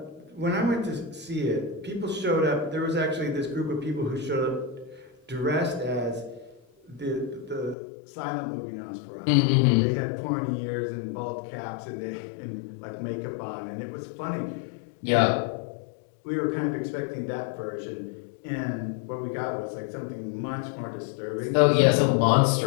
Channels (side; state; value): right; drops out; at 7.8 s